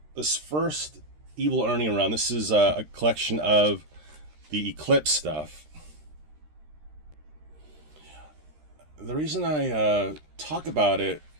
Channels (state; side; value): late; left; 13 ms